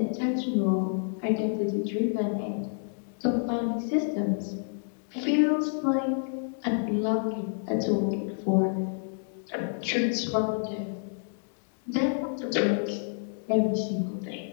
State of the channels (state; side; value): silent; right; digital silence